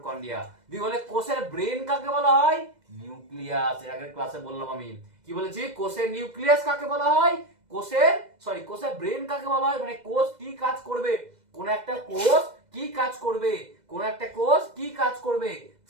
দুই বলে কোষের ব্রেন কাকে বলা হয়? নিউক্লিয়াস। এর আগের ক্লাসে বললাম আমি, কি বলেছি? কোষের নিউক্লিয়াস কাকে বলা হয়? কোষের ব্রেন কাকে বলা হয়? মানে কোষ কি কাজ করবে, কোন একটা কোষ কি কাজ করবে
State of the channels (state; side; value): late; left; 2.0 ms